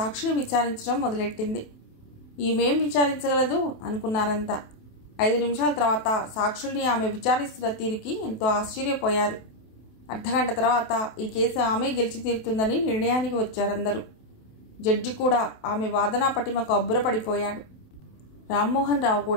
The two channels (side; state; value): right; late; 28 ms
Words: విచారించడం మొదలెట్టింది. ఈమెం విచారించగలదు అనుకున్నారంతా. 5 నిమిషాల తర్వాత సాక్షుల్ని ఆమె విచారిస్తున్న తీరికి ఎంతో ఆశ్చర్యపోయారు. అర్ధగంట తర్వాత ఈ కేసు ఆమె గెలిచి తీరుతుందని నిర్ణయానికి వచ్చారందరూ. జడ్జి కూడా ఆమె వాదనా పటిమకు అబ్బురపడిపోయాడు. రామ్మోహన్ రావు